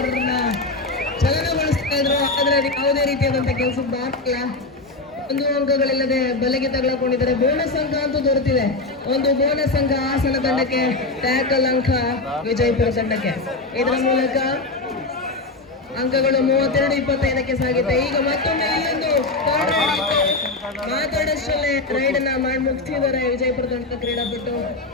ಚಲನಗೊಳಿಸ್ತಾ ಇದ್ರು. ಆದ್ರೆ ಅದು ಯಾವುದೇ ರೀತಿಯಾದಂತ ಕೆಲಸದ ಆಗ್ತಿಲ್ಲ. ಒಂದು ಅಂಕಗಳಿಲ್ಲದೆ ಬಲೆಗೆ ತಗೊಳ್ಕೊಂಡಿದ್ದಾರೆ. ಬೋನಸ್ ಅಂಕ ಅಂತೂ ದೊರೆತಿದೆ. ಒಂದು ಬೋನಸ್ ಅಂಕ ಹಾಸನ ತಂಡಕ್ಕೆ, ಟ್ಯಾಕಲ್ ಅಂಕ ವಿಜಯಪುರ ತಂಡಕ್ಕೆ. ಇದರ ಮೂಲಕ ಅಂಕಗಳು 32-25 ಸಾಗಿದೆ. ಈಗ ಮತ್ತೊಮ್ಮೆ ಇಲ್ಲೊಂದು ಮಾತಾಡಷ್ಟರಲ್ಲೇ ರೈಡ್ ಅನ್ನ ಮಾಡಿ ಮುಗಿಸಿದ್ದಾರೆ ವಿಜಯಪುರ ತಂಡದ ಕ್ರೀಡಾಪಟು.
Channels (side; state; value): right; quieter; 3.2 dB